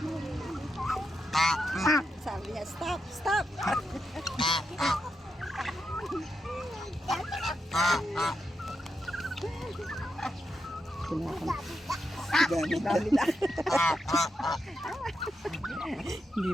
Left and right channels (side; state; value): both; normal; correlation 0.85